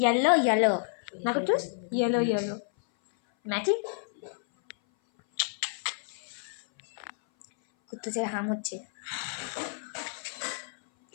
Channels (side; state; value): right; silent; 57 dB below the other